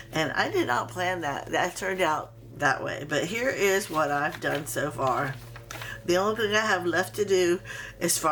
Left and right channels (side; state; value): both; identical; correlation 1.00